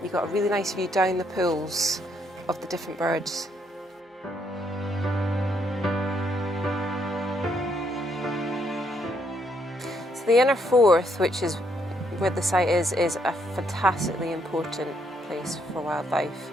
you got a really nice view down the pools of the different birds. So the inner Forth, which is where the site is a fantastically important place for wildlife.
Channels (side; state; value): both; normal; correlation 0.73